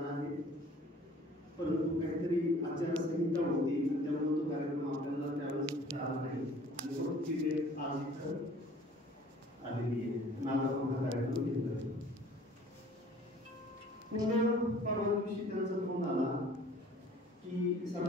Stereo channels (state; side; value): normal; both; correlation 0.51